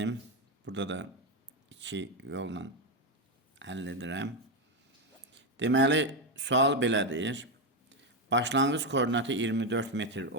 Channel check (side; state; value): both; normal; correlation 0.08